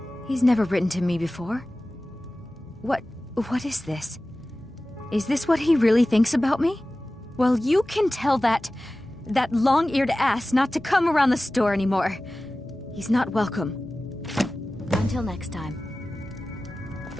He's never written to me before. What is this? Is this what he really thinks about me? Well, you can tell that long-eared ass not to come around the store anymore. He's not welcome. Until next time.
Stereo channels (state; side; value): normal; both; correlation 0.96